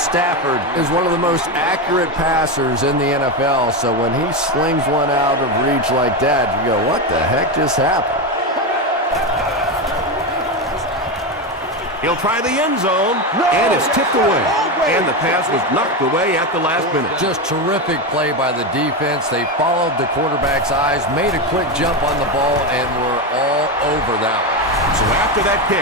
is one of the most accurate passers in the NFL, so when he slings one out of reach like that, you go, what the heck just happened? He'll try the end zone, and it's tipped away. And the pass was knocked away at the last minute. Just terrific play by the defense. They followed the quarterback's eyes, made a quick jump on the ball, and were all over that one. So after that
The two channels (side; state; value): both; normal; correlation 0.14